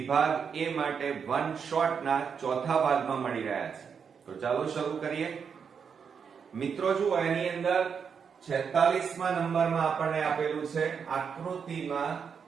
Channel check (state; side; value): quieter; left; 6.6 dB